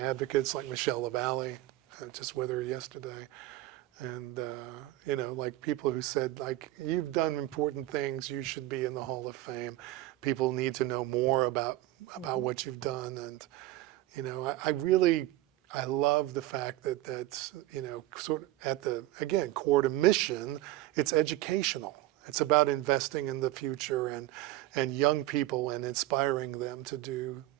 like Michelle LaValle, just with her yesterday. And, you know, like people who said, like, you've done important things, you should be in the Hall of Fame. People need to know more about what you've done. And, you know, I love the fact that that's, you know, sort of at the, again, core to mission, it's educational. It's about investing in the future and young people and inspiring them to do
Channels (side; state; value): left; quieter; 16.2 dB